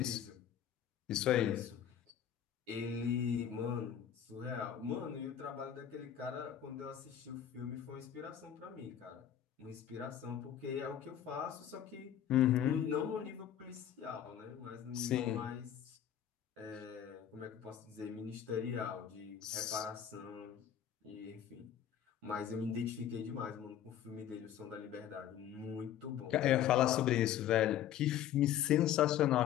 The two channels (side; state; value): right; quieter; 10.2 dB